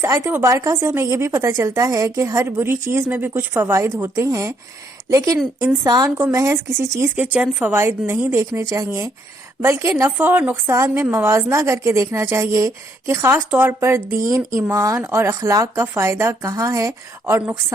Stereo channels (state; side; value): normal; both; correlation 0.71